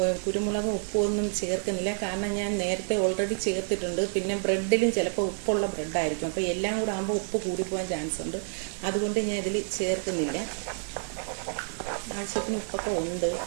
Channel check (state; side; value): silent; left; 57 dB below the other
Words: കുരുമുളകും ഉപ്പും ഒന്നും ചേർക്കുന്നില്ല, കാരണം ഞാൻ നേരത്തെ ഓൾറെഡി ചേർത്തിട്ടുണ്ട്. പിന്നെ ബ്രെഡിലും ചിലപ്പോൾ ഉപ്പുള്ള ബ്രെഡായിരിക്കും, അപ്പോൾ എല്ലാം കൂടെ ആകുമ്പോൾ ഉപ്പ് കൂടിപ്പോകാൻ ചാൻസ് ഉണ്ട്. അതുകൊണ്ട് ഞാൻ ഇതിൽ ചേർക്കുന്നില്ല. ആവശ്യത്തിന് ഉപ്പൊക്കെ ഉണ്ട്.